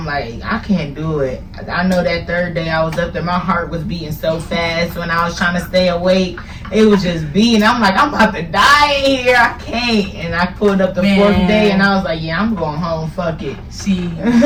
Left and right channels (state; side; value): identical; both; correlation 1.00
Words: like, I can't do it. I know that 3rd day I was up there, my heart was beating so fast when I was trying to stay awake. It was just beating. I'm like, I'm about to die in here. I can't. And I pulled up the 4th day and I was like, yeah, I'm going home. Fuck it. See,